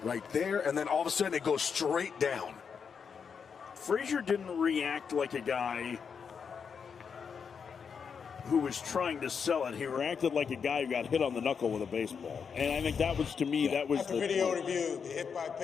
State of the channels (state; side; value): quieter; right; 6.4 dB